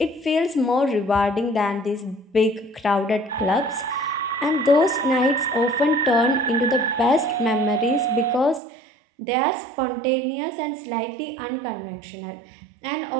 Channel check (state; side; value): drops out; left; at 8.6 s